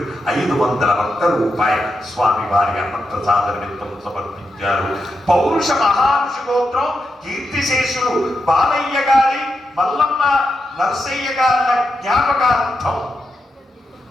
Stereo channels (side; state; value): both; normal; correlation 0.86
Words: 501 రూపాయలు స్వామివారి అన్నప్రసాద నిమిత్తం సమర్పించారు. పౌరుష మహారుషి గోత్రం కీర్తిశేషులు బాలయ్య గారి మల్లమ్మ నరసయ్య గారి జ్ఞాపకార్థం